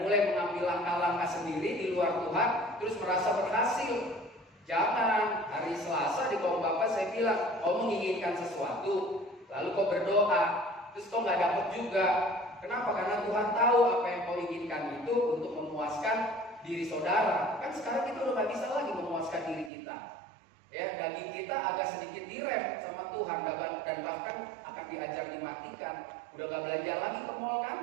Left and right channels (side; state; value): left; drops out; at 19.7 s